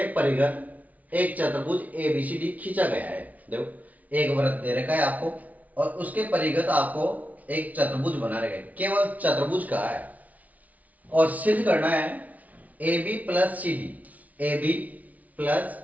परिघ एक चतुर्भुज ABCD खींचा गया है। देखो एक वृत्त दे रखा है आपको और उसके परिघ आपको एक चतुर्भुज बना रखा है, केवल चतुर्भुज का है और सिद्ध करना है AB plus CD, AB plus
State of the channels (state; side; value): late; left; 0.072 ms